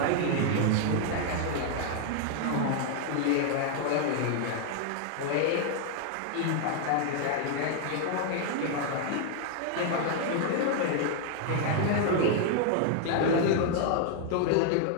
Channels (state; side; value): different; both; correlation 0.00